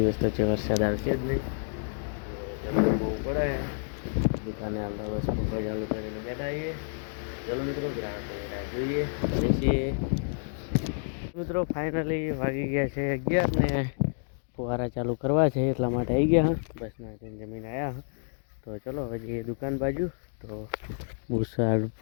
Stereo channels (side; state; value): right; silent; digital silence